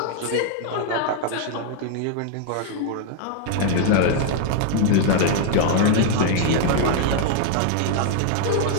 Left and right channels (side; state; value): both; different; correlation 0.00